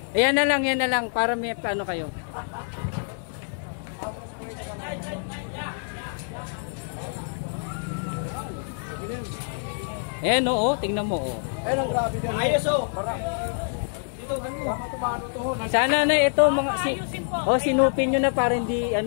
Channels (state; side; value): silent; right; digital silence